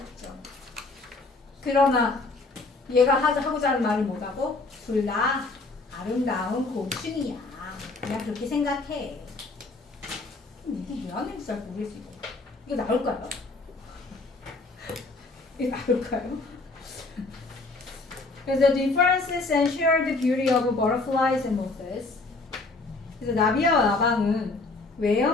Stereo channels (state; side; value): quieter; right; 3.5 dB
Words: 그러나 얘가 하고자 하는 말이 뭐라고? 둘 다 아름다운 곤충이야. 그냥 그렇게 생각해. 이게 왜 안 되는지 잘 모르겠어. 이거 나올까요? 이거 나올까요? 그래서 differences and share the beauty of butterflies and moths. 그래서 나비와 나방은